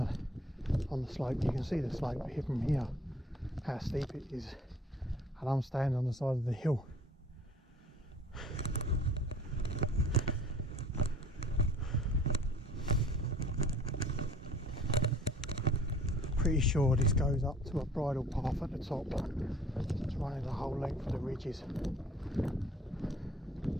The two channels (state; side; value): normal; both; correlation 0.51